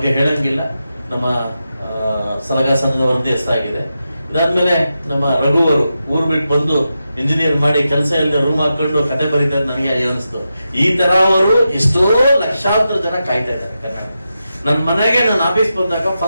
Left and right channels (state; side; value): inverted; both; correlation -0.89